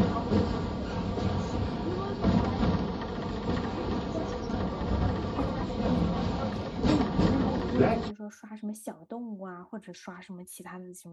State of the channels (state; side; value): identical; both; correlation 1.00